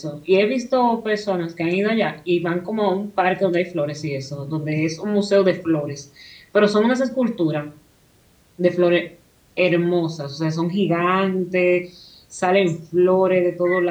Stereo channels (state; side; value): identical; both; correlation 1.00